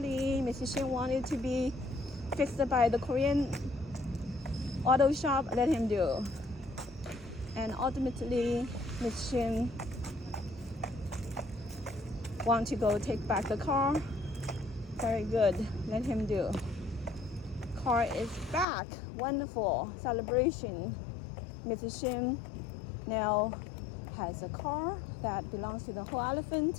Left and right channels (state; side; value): drops out; right; at 18.7 s